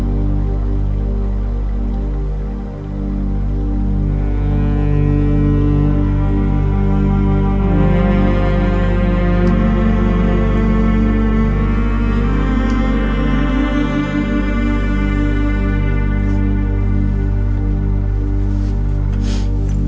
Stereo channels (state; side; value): identical; both; correlation 1.00